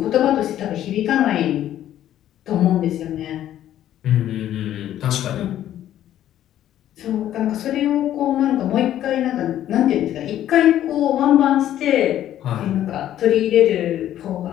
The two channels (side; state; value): right; quieter; 11.9 dB